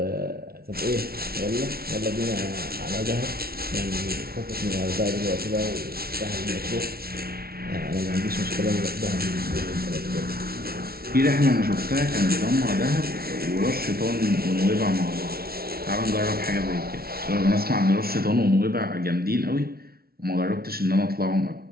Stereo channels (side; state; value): left; late; 0.44 ms